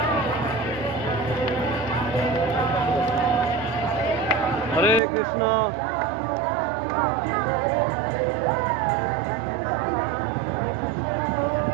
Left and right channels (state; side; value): drops out; left; at 5.0 s